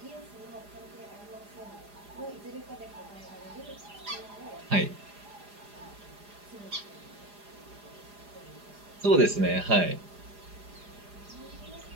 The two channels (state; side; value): late; left; 4.9 ms